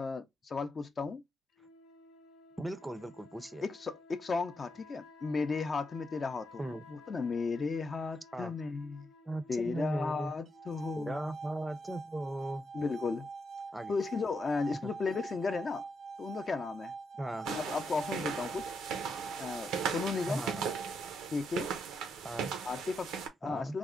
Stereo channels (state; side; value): normal; both; correlation 0.82